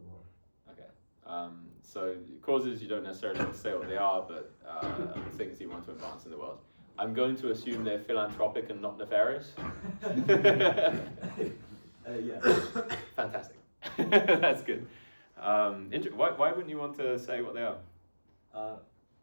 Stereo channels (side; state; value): both; inverted; correlation -1.00